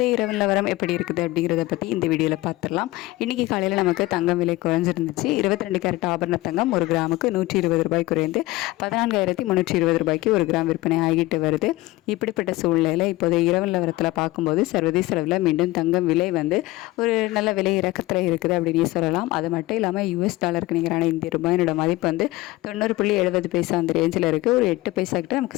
இரவு நிலவரம் எப்படி இருக்குது அப்படிங்கிறத பற்றி இந்த வீடியோவில் பார்த்துடலாம். இன்றைக்கி காலையில் நமக்கு தங்கம் விலை குறைஞ்சிருந்துச்சு. 22 கேரட் ஆபரண தங்கம் ஒரு கிராமுக்கு 120 ரூபாய் குறைந்து 14,320 ரூபாய்க்கு ஒரு கிராம் விற்பனை ஆகிட்டு வருது. இப்படிப்பட்ட சூழ்நிலையில் இப்போதைய இரவு நிலவரத்தில் பார்க்கும்போது சர்வதேச அளவில் மீண்டும் தங்கம் விலை ஒரு நல்ல விலை இறக்கத்தில் இருக்குது அப்படின்னு சொல்லலாம். அது மட்டும் இல்லாமல் US டாலருக்கு நிகரான இந்திய ரூபாயினோட மதிப்பு 90.70 அந்த ரேஞ்சில் இருக்குது. ஒரு 8 பைசா கிட்ட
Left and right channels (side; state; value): right; quieter; 19.3 dB